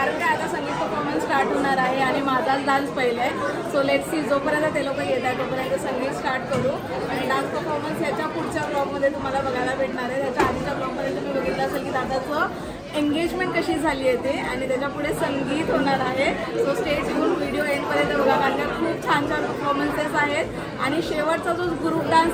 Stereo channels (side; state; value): both; identical; correlation 1.00